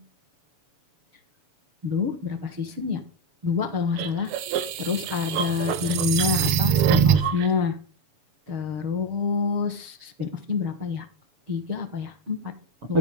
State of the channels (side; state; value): left; late; 7.1 ms